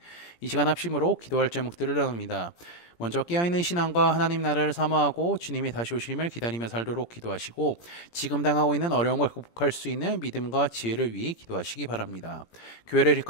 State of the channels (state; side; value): late; right; 17 ms